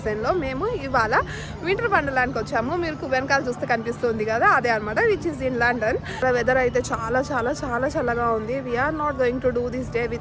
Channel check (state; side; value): identical; both; correlation 1.00